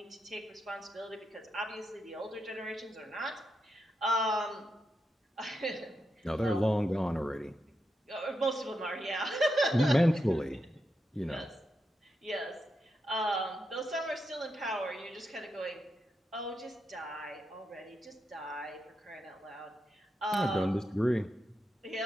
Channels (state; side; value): normal; both; correlation 0.85